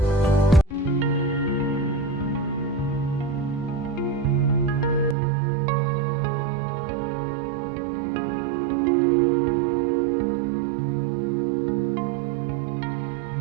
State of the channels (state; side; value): drops out; left; at 5.2 s